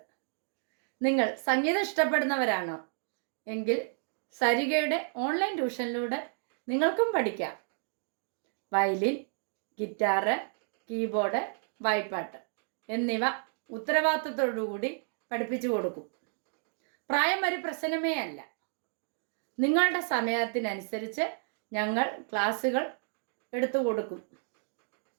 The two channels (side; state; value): left; silent; digital silence